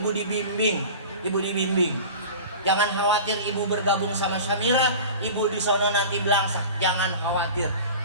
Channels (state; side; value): inverted; both; correlation -0.36